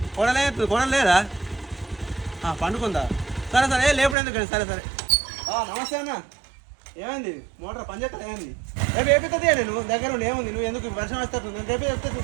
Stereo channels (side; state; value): left; drops out; at 4.2 s